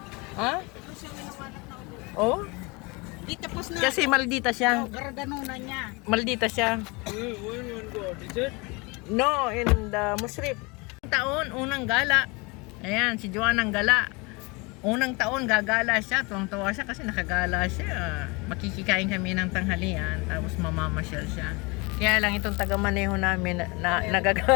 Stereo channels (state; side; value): quieter; right; 27.2 dB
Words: Ha? Siya winawalat ng ulo. Oh? Di tapos na. Kasi maldita siya. Garaganunan niya. Maldita siya. No, in the Musrip. Taon, unang gala. Ayan, si Joanne ang gala. Unang taon, gagala siya. Tuwang-tuwa siya kasi nakagala siya. Makikikain kami ng tanghalian. Tapos mamamasyal siya. Kaya lang itong taga-maneho namin na